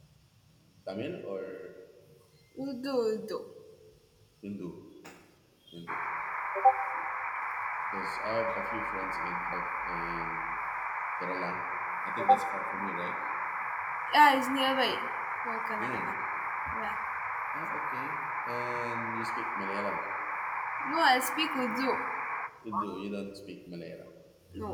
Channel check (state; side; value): identical; both; correlation 1.00